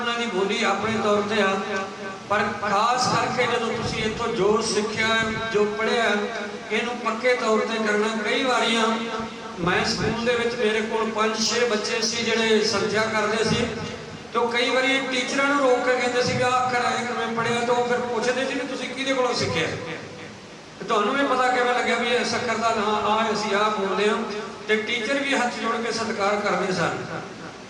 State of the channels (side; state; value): both; identical; correlation 1.00